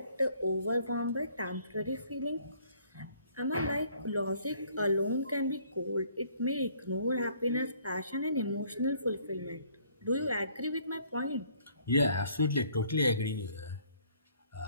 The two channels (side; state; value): both; inverted; correlation -0.61